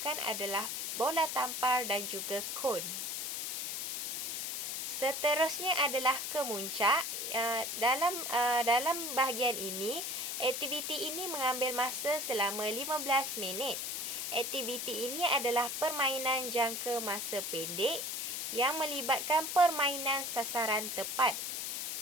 adalah bola tampar dan juga kon. Seterusnya adalah kemuncak. Dalam bahagian ini, aktiviti ini mengambil masa selama 15 minit. Aktiviti ini adalah permainan jangka masa pendek yang melibatkan permainan sasaran tepat.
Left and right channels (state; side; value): noise; left; hiss, 3 dB below the sound